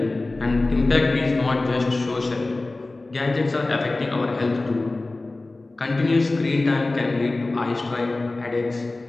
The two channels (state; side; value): quieter; right; 3.1 dB